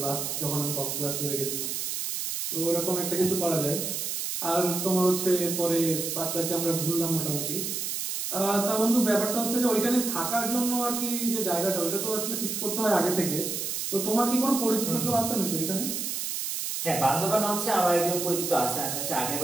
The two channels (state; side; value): noise; right; hiss, 3 dB below the sound